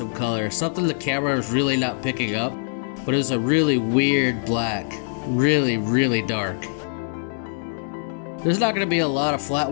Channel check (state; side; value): silent; right; 63 dB below the other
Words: color, something the camera was really not picking up. But it was a really weird black, really dark. There's not going to be a lot of